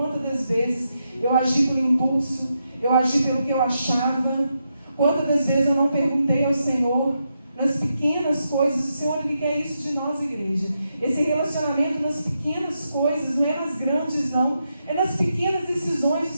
das vezes eu agi por impulso, eu agi pelo que eu achava. Quantas das vezes eu não perguntei ao Senhor, nas pequenas coisas, o Senhor, Ele quer isso de nós, igreja. Esse relacionamento nas pequenas coisas, não é nas grandes não, é nas pequenas decisões do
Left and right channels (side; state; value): both; inverted; correlation -0.84